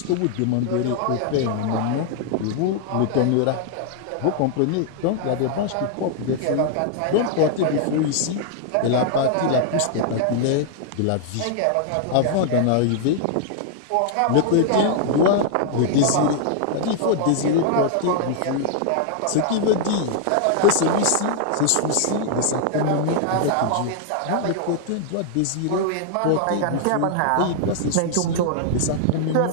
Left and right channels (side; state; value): both; different; correlation -0.01